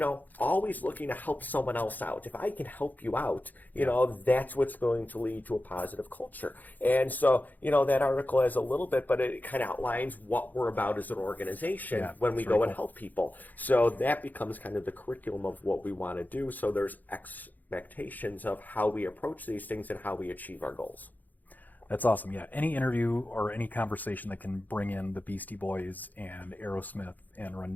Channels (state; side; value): late; right; 0.083 ms